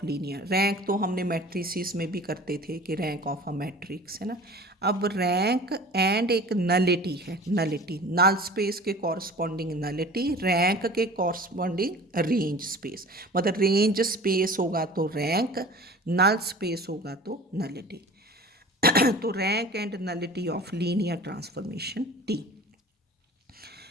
linear. Rank तो हमने मैट्रिसेस में भी करते थे कि रैंक ऑफ अ मैट्रिक्स है ना। अब रैंक एंड एक नलिटी है, नलिटी नल स्पेस के कॉरस्पॉन्डिंग नलिटी, रैंक के कॉरस्पॉन्डिंग रेंज स्पेस। मतलब रेंज स्पेस होगा तो रैंक, नल स्पेस होगा तो नलिटी। तो rank and nullity of linear transformation T.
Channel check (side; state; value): both; normal; correlation 0.42